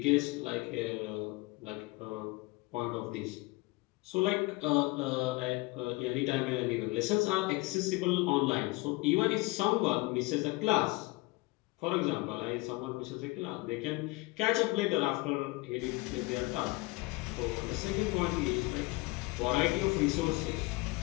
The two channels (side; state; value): right; quieter; 23.2 dB